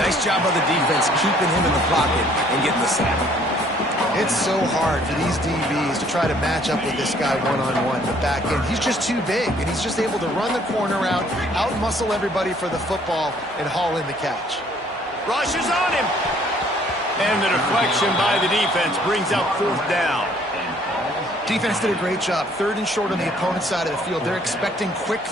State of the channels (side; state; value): both; normal; correlation 0.61